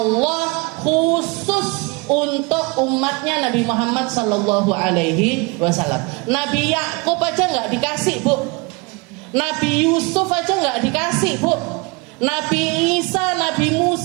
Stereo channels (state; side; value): quieter; left; 27.9 dB